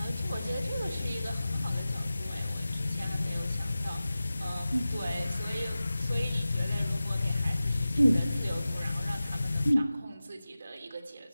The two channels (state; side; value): inverted; both; correlation -0.95